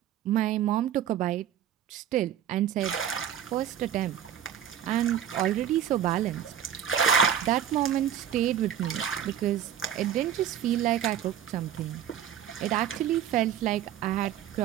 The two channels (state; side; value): quieter; left; 9.9 dB